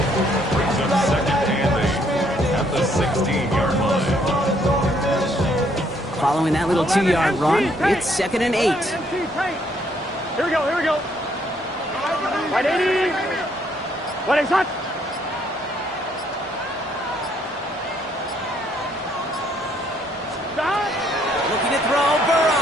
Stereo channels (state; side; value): normal; both; correlation 0.68